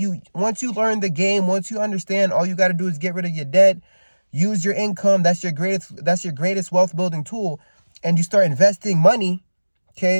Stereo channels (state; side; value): inverted; both; correlation -1.00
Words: Once you learn the game, once you understand, all you got to do is get rid of your debt. Use your income. That's your greatest wealth building tool. And you start investing money,